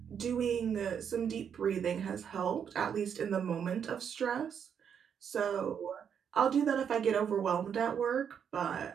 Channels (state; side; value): quieter; left; 7.8 dB